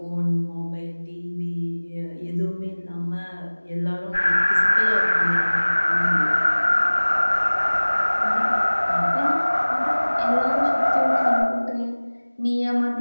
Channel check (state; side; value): inverted; both; correlation -1.00